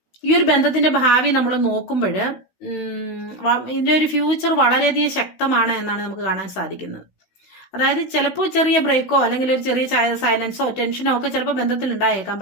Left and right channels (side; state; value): right; late; 16 ms